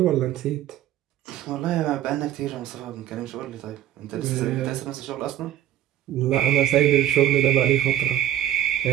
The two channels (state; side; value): quieter; left; 12.3 dB